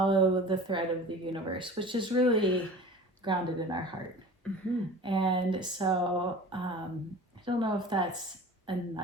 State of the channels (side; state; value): both; normal; correlation 0.40